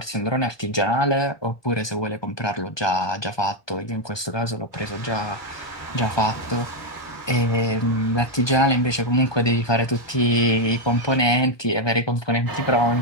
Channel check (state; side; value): late; right; 1.2 ms